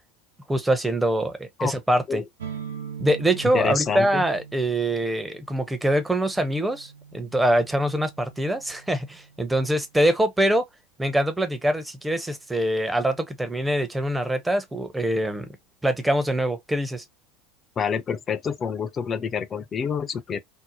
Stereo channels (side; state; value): both; normal; correlation 0.83